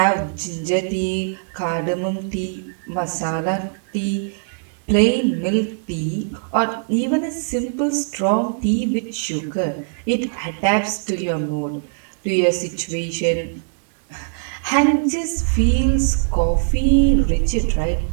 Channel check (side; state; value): left; silent; 61 dB below the other